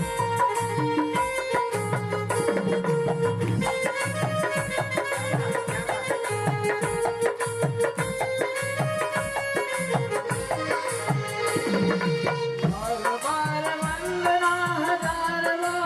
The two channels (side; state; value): both; identical; correlation 1.00